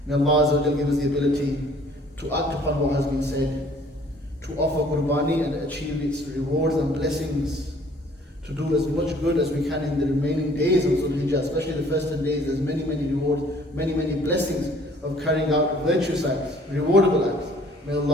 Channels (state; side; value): normal; both; correlation 0.57